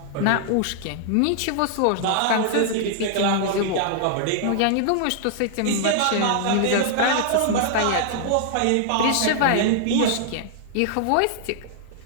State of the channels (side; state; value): both; different; correlation -0.01